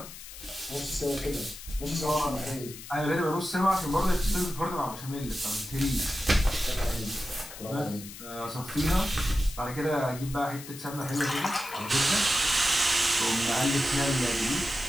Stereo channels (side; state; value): left; noise; hiss, 14 dB below the sound